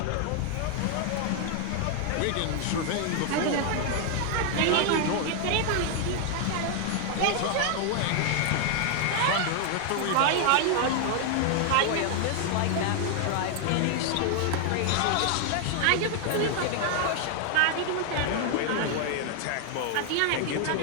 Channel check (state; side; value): different; both; correlation 0.00